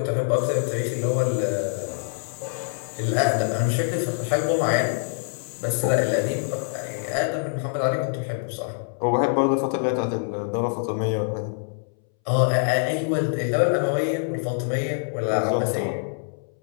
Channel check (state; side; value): silent; right; 62 dB below the other